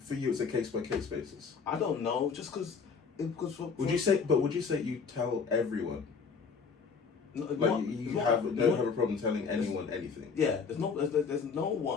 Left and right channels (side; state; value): right; quieter; 5.5 dB